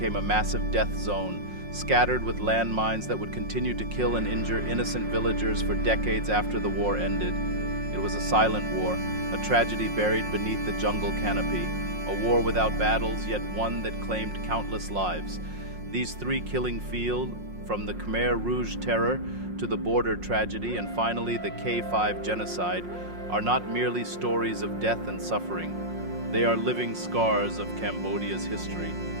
a massive death zone, scattered with landmines that would continue to kill and injure innocent villagers for decades after the war ended. It was a silent war, a tragedy buried beneath the jungle canopy, a war without battles, yet one that claimed countless lives. These three killing fields, from the Khmer Rouge terror to the border tragedy and finally the K5 genocide, are not merely stories of death and suffering. They are living scars of Cambodia's history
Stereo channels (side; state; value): left; late; 5.6 ms